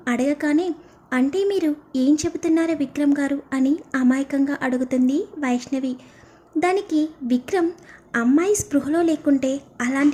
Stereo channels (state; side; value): identical; both; correlation 1.00